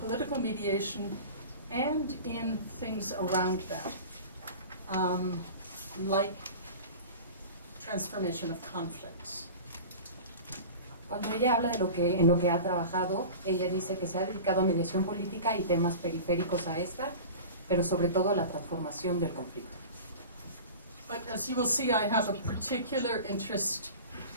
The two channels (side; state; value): both; inverted; correlation -0.35